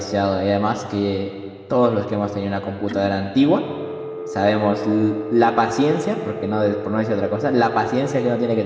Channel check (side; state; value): both; identical; correlation 1.00